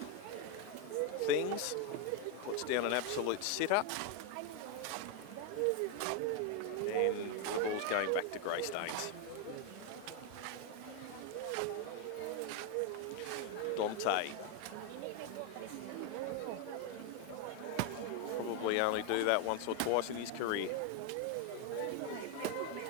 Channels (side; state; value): both; different; correlation 0.01